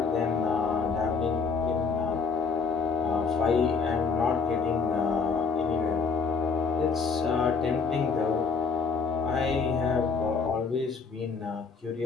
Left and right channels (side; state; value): right; quieter; 5.1 dB